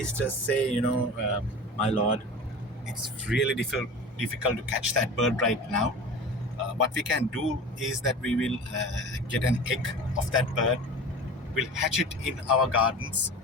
say, "My lord, it's really difficult to catch that bird right now. What we can do is that we will get an egg of that bird, we'll hatch it in our gardens,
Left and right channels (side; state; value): both; normal; correlation 0.35